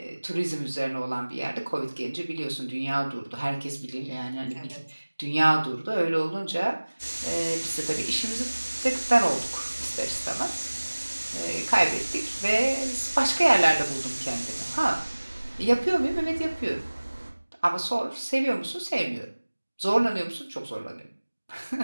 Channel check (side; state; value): both; inverted; correlation -1.00